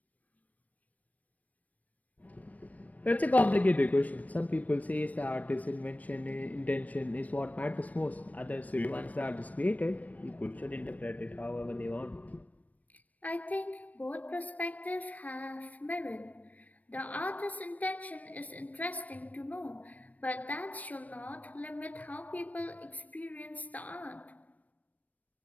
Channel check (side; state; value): right; late; 0.072 ms